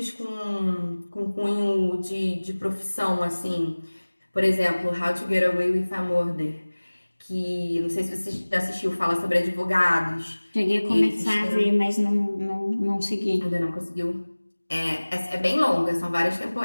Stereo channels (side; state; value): both; inverted; correlation -1.00